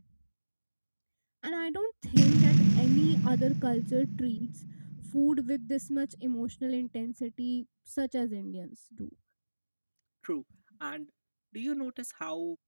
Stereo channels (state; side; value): inverted; both; correlation -1.00